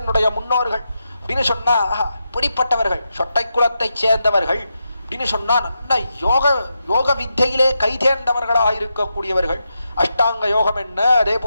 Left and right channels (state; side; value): inverted; both; correlation -0.86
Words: என்னுடைய முன்னோர்கள் அப்படின்னு சொன்னா பிடிப்பட்டவர்கள், சொட்டை குலத்தை சேர்ந்தவர்கள் அப்படின்னு சொன்னா நல்ல யோக வித்தையிலே கைதேர்ந்தவர்களாக இருக்கக்கூடியவர்கள். அஷ்டாங்க யோகம் என்ன, அதே